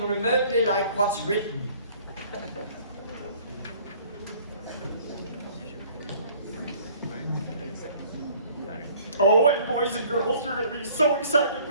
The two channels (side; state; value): both; inverted; correlation -0.55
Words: remotely like what's written. Oh, and boys and girls, you're going to be so excited